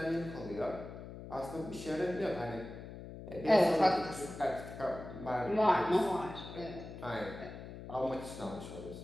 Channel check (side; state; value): left; noise; hum, 12 dB below the sound